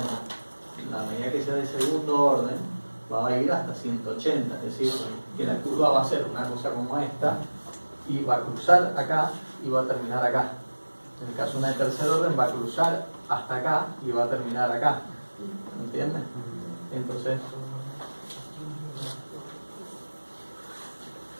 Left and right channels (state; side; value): inverted; both; correlation -1.00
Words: A medida que sea de segundo orden, va a ir hasta 180. Es decir, que la curva va a ser una cosa como esta y va a cruzar acá y va a terminar acá. En el caso de una de tercer orden va a cruzar hasta acá y va a terminar acá. ¿Entiendes? Entonces,